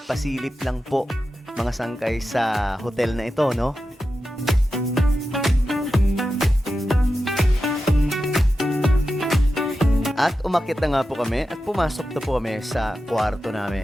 pasilip lang po mga sangkay sa hotel na ito, no? At umakyat na nga po kami at pumasok na po kami sa kwarto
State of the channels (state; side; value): normal; both; correlation 0.91